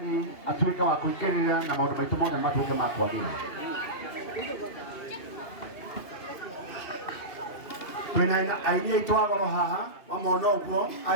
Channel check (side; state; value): right; late; 2.7 ms